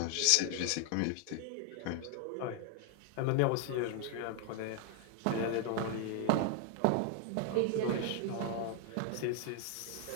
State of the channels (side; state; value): both; different; correlation 0.00